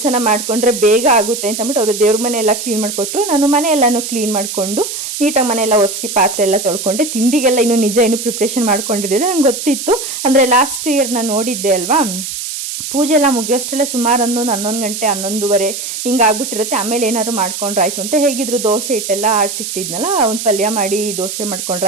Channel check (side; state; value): right; noise; hiss, 6 dB below the sound